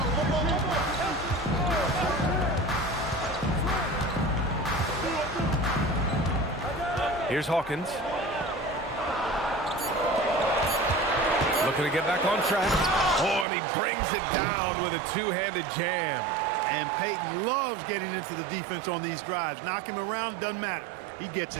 Here's Hawkins. Looking to get back on track. Oh, and he brings it down with a 2-handed jam. And Peyton loves getting into the defense on these drives. Knock him around, doesn't matter. He gets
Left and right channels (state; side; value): drops out; left; at 13.5 s